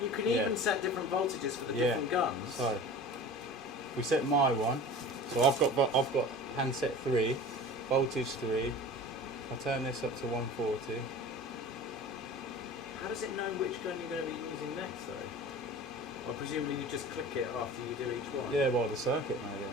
You can Yeah. even set different voltages for the Yeah. different guns. So if we set my one. So I've got handset 3, voltage 3. I turn this up to 140. How does it know which gun you're going to be using next, though? Well, presumably you just click it after you do each one. Yeah, well the circuit maybe,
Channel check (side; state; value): both; normal; correlation 0.37